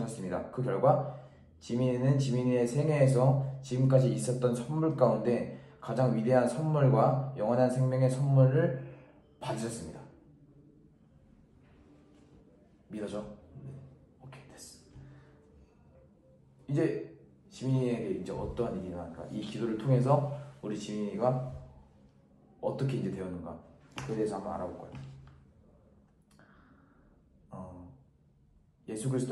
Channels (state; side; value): identical; both; correlation 1.00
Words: 그 결과 지민이는 지민이의 생애에서 지금까지 있었던 선물 가운데 가장 위대한 선물과 영원한 생명의 선물을 받으셨습니다. 믿어져? 오케이, 됐어. 이제 지민이에게 이제 어떠한 일이 일어날까? 이 기도를 통해서 우리 지민이가 어떻게 이제 되었는가 그에 대해서 한번 알아볼 거예요. 예수